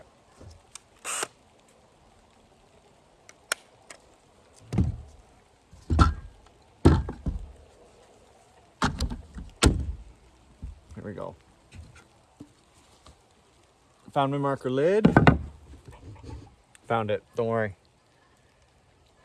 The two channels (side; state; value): both; identical; correlation 1.00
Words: Here we go. Found my marker lid. Found it. Don't worry.